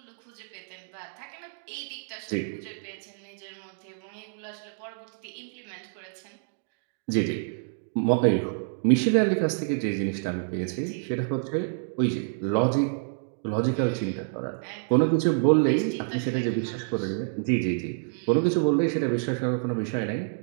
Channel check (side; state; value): left; silent; digital silence